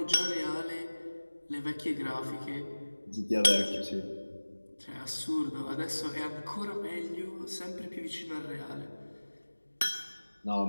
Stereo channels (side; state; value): both; inverted; correlation -1.00